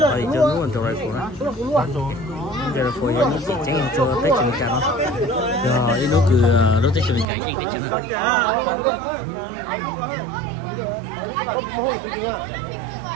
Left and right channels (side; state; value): left; drops out; at 7.2 s